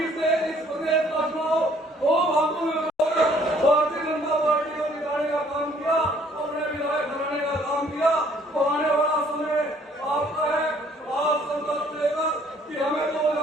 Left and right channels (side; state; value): both; normal; correlation 0.61